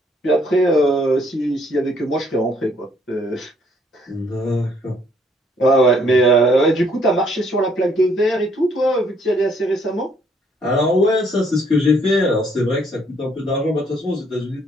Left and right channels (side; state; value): both; normal; correlation 0.67